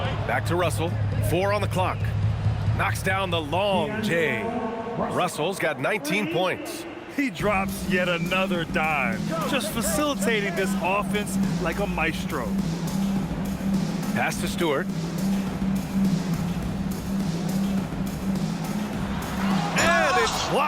Back to Russell. 4 on the clock. Knocks down the long J. Russell's got 19 points. He drops yet another dime, just facilitating this offense like a maestro. Pass to Stewart. And it's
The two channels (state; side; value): identical; both; correlation 1.00